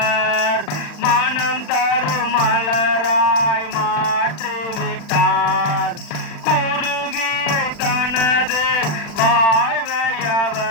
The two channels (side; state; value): right; late; 40 ms